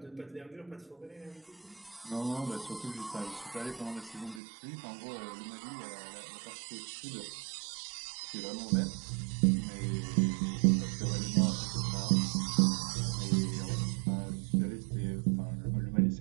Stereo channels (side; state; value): left; drops out; at 4.4 s